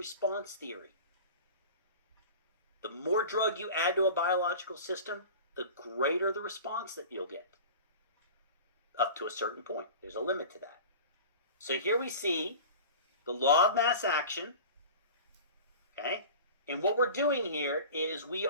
theory. The more drug you add to a biological system, the greater the response that you'll get. Up to a certain point. There's a limit to that. So here we see the law of mass action, okay? And what we're doing here is we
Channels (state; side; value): inverted; both; correlation -0.36